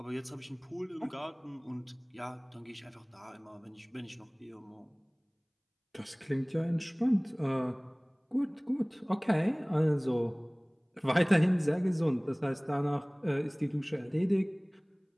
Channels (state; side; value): identical; both; correlation 1.00